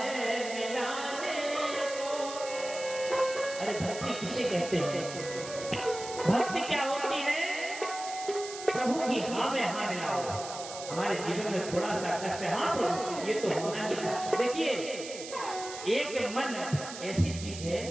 मिलाने को। अरे भक्ति किसे कहते हैं? भक्ति क्या होती है? प्रभु की हाँ में हाँ मिलाओ। हमारे जीवन में थोड़ा सा कष्ट है, हाँ प्रभु ये तो होना ही है। देखिए एक मन ऐसी चीज है,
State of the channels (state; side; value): noise; right; hiss, 11 dB below the sound